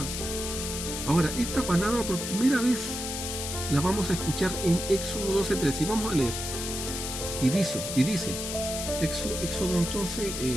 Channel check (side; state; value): left; noise; hiss, 5 dB below the sound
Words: Ahora, esta palabra por primera vez la vamos a escuchar en Éxodo 12:13 y vamos a leer. Y dice Éxodo entonces